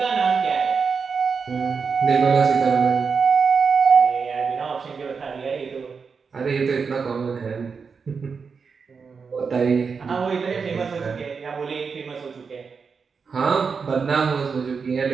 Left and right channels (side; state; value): left; quieter; 5.5 dB